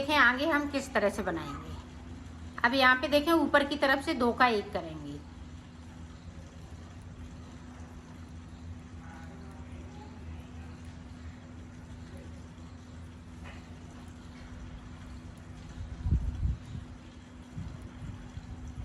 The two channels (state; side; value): identical; both; correlation 1.00